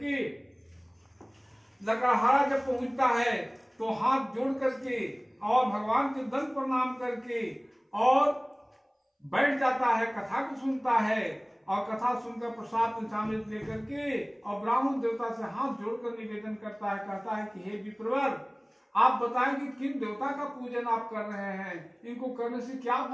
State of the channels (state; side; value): identical; both; correlation 1.00